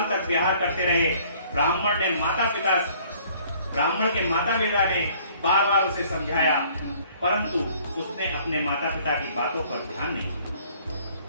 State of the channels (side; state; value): both; inverted; correlation -0.57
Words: तक विहार करते रहे। ब्राह्मण के माता पिता ने बार बार उसे समझाया, परंतु उसने अपने माता पिता की बातों पर ध्यान नहीं दिया।